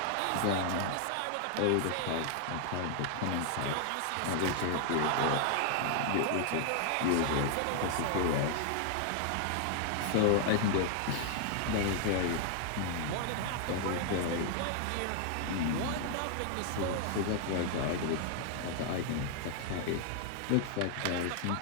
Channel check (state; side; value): different; both; correlation 0.00